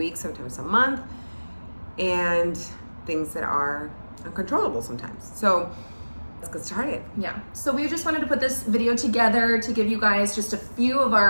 sometimes a month, and things that are uncontrollable sometimes. So let's get started. Yeah, so we just wanted to put this video together to give you guys just a few of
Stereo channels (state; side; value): inverted; both; correlation -1.00